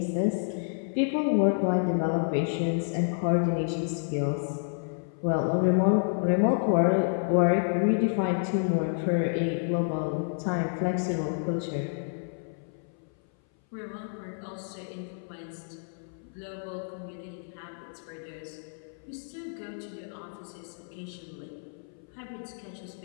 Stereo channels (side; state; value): right; silent; 58 dB below the other